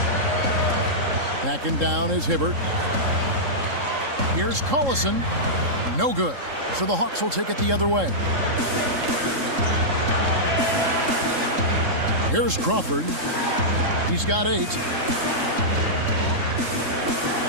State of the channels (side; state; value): left; late; 3.7 ms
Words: Backing down is Hibbert. Here's Collison. No good. So the Hawks will take it the other way. Here's Crawford. He's got 8.